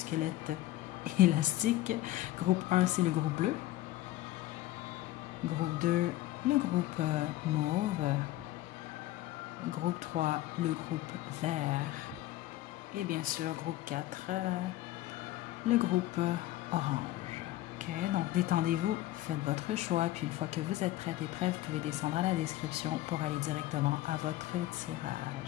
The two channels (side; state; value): right; quieter; 15.6 dB